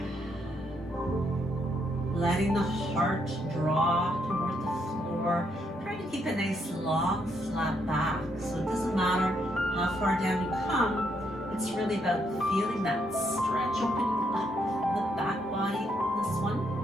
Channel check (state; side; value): normal; both; correlation 0.75